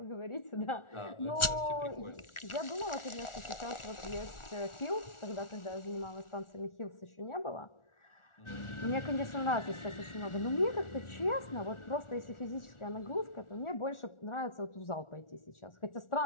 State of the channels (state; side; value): late; right; 1.4 ms